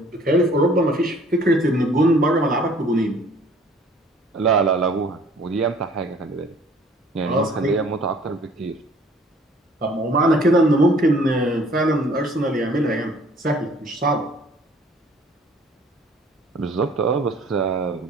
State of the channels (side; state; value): both; normal; correlation 0.55